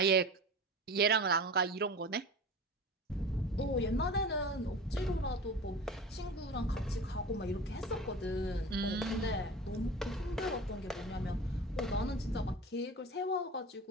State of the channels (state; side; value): normal; both; correlation 0.34